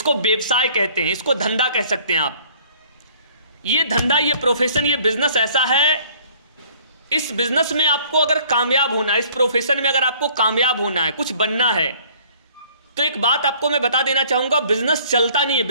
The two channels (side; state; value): both; inverted; correlation -0.56